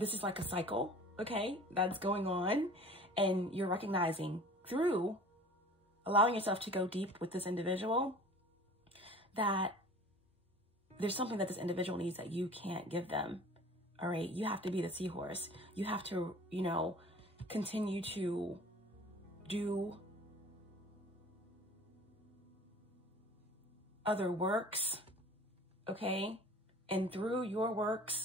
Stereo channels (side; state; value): both; normal; correlation 0.44